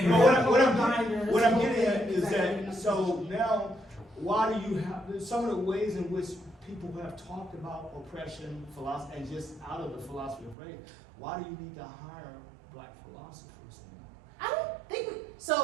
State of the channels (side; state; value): left; drops out; at 10.6 s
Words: What I'm getting at is that, so now, why do you have, some of the ways in which people have talked about oppression, philosophy, and just out of the philosophy of race, why do you need to hire black philosophers? I don't think,